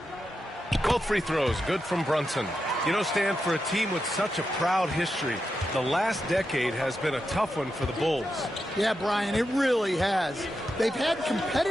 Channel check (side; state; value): both; normal; correlation 0.87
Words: Both free throws good from Brunson. You know, Stan, for a team with such a proud history, the last decade has been a tough one for the Bulls. Yeah, Brian, it really has. They've had